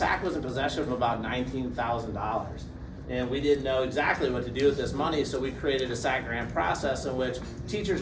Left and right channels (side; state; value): both; identical; correlation 1.00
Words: was in possession of about $19,000. And we didn't know exactly what to do with this money, so we created a SAC grant process in which teachers